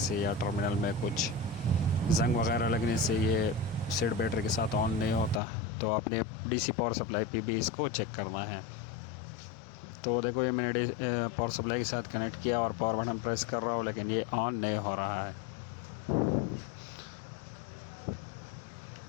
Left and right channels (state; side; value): drops out; right; at 5.4 s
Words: या टर्मिनल में कुछ जंग वगैरह लगने से ये सेट बैटरी के साथ ऑन नहीं होता। तो आपने डीसी पावर सप्लाई पे भी इसको चेक करना है। तो देखो ये मैंने पावर सप्लाई के साथ कनेक्ट किया और पावर बटन प्रेस कर रहा हूँ लेकिन ये ऑन नहीं हो रहा है।